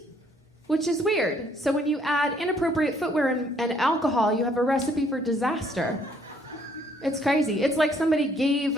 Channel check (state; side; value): normal; both; correlation 0.65